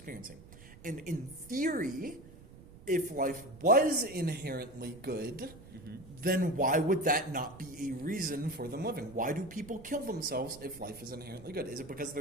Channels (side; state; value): right; noise; rumble, 18 dB below the sound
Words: And in theory, if life was inherently good, then why would that not be a reason for them living? Why do people kill themselves if life is inherently good? Is it because